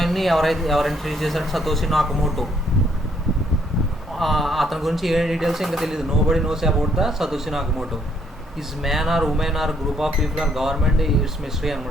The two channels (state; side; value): normal; both; correlation 0.69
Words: ఎవరు ఇంట్రడ్యూస్ చేశారంటే సతోషి నాకమోటో. అతని గురించి ఏ డీటెయిల్స్ ఇంకా తెలియదు. Nobody knows about the Satoshi Nakamoto. Is man or woman or group of people or government it's mystery